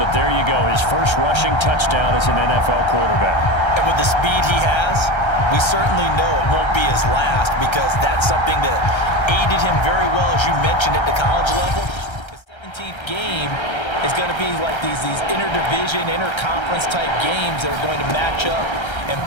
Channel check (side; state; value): right; late; 1.3 ms